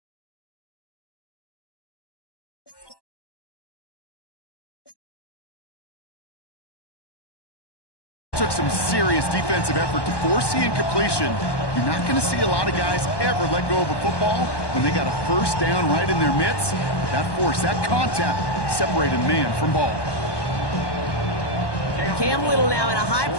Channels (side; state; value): right; late; 1.2 ms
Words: Took some serious defensive effort to force the incompletion. You're not going to see a lot of guys ever let go of a football when they got a 1st down right in their midst. That force, that contact, separated man from ball. Cam Little now in a